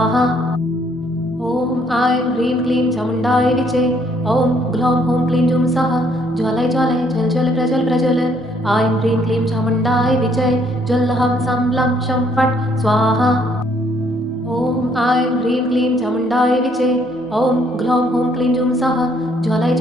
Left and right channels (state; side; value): normal; both; correlation 0.67